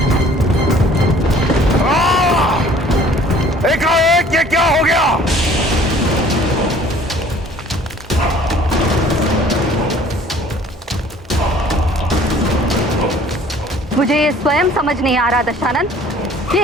एकाएक ये क्या हो गया? मुझे ये स्वयं समझ नहीं आ रहा दशानन कि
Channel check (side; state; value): both; normal; correlation 0.53